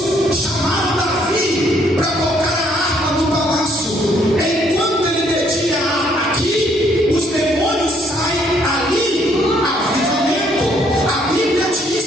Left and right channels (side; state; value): both; normal; correlation 0.67